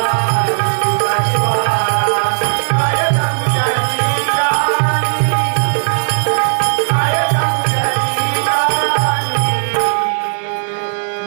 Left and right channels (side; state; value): left; silent; 65 dB below the other